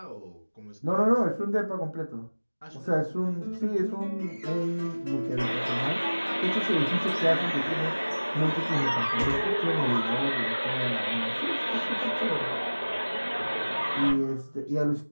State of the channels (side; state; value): both; inverted; correlation -1.00